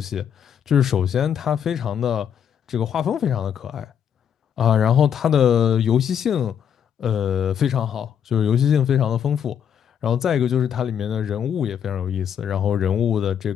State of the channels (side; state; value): right; quieter; 8.5 dB